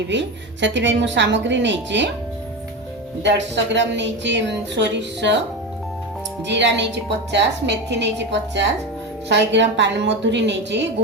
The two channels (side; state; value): both; normal; correlation 0.20